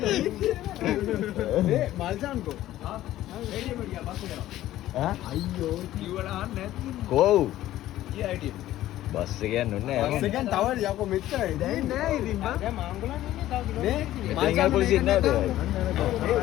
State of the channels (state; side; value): quieter; right; 14.2 dB